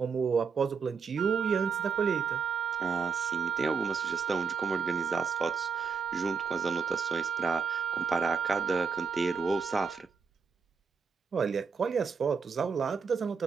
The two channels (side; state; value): left; quieter; 5.6 dB